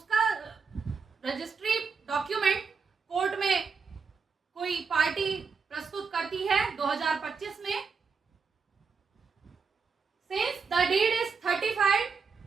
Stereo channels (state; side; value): quieter; left; 5.3 dB